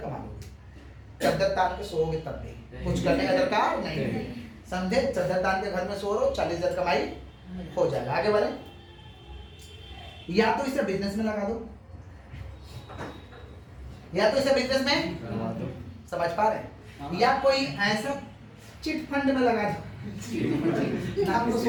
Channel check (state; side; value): identical; both; correlation 1.00